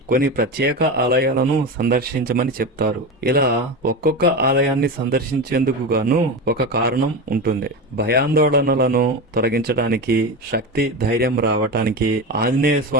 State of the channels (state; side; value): normal; both; correlation 0.22